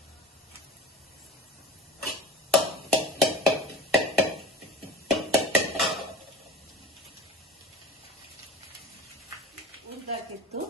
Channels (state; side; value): normal; both; correlation 0.38